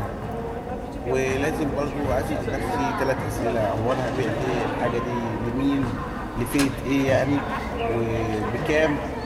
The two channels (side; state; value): both; identical; correlation 1.00